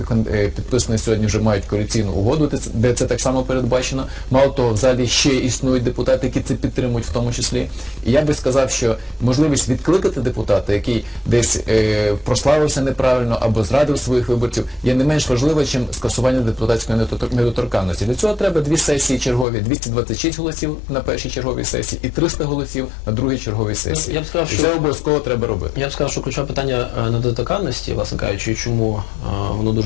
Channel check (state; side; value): drops out; right; at 19.5 s